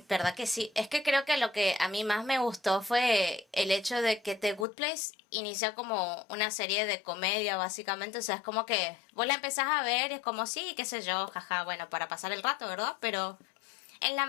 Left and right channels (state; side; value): drops out; right; at 4.7 s